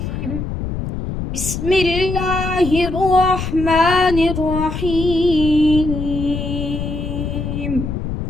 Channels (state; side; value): noise; left; rumble, 5 dB below the sound